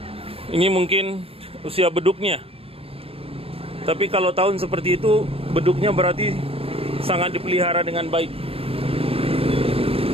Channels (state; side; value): late; left; 0.28 ms